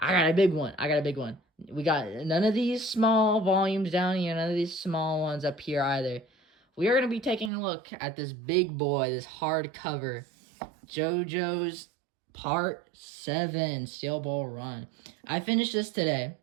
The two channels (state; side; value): drops out; left; at 7.5 s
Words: got a big one. We got none of these small volumes down here, none of these small ones up here either. We are going to be taking a look at this big boy, this hardcover, JoJo's Part 7 Steel Ball Run. I finished this today.